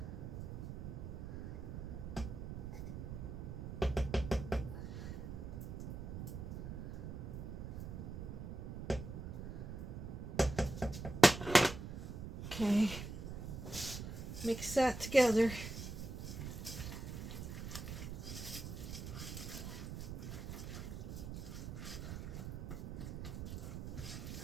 Okay, mix that together.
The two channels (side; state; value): right; noise; rumble, 6 dB below the sound